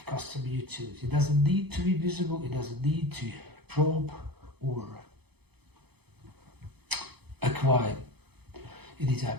customer utility. It doesn't need to be visible, it doesn't need to probe or acquire any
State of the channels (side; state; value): left; late; 0.98 ms